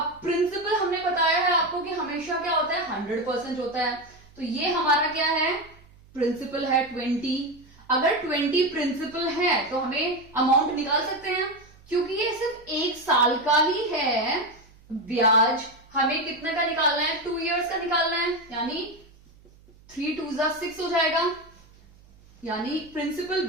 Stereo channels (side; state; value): right; noise; hum, 26 dB below the sound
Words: प्रिंसिपल हमने बताया है आपको कि हमेशा क्या होता है 100% होता है, तो ये हमारा क्या है प्रिंसिपल है 20। अगर 20 प्रिंसिपल है तो हमें अमाउंट निकाल सकते हैं, क्योंकि ये सिर्फ 1 साल का ही है। ब्याज हमें कितने का निकालना है 2 इयर्स का निकालना है, यानी 3 2s are 6 हो जाएगा, यानी प्रिंसिपल